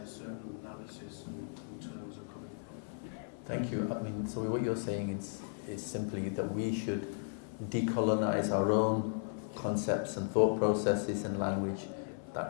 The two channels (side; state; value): right; silent; 54 dB below the other